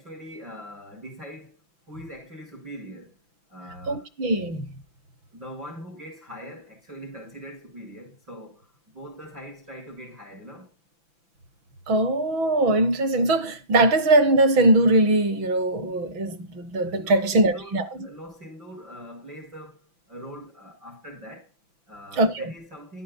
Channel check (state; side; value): late; left; 5.9 ms